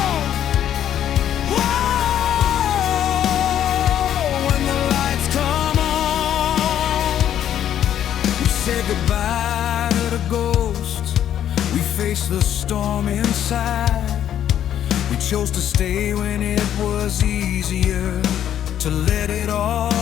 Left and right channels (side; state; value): right; quieter; 10.5 dB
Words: Whoa, when the lights come on, we say goodbye to the ghosts, we face the storm inside. We chose to stay when it was easier to let it all